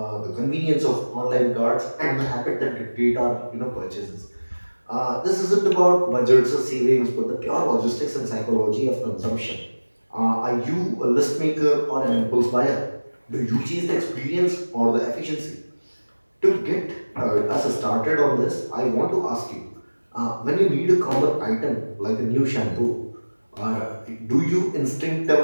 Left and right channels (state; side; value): inverted; both; correlation -1.00